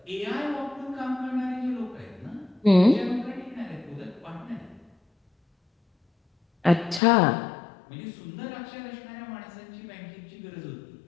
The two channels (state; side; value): drops out; right; at 7.0 s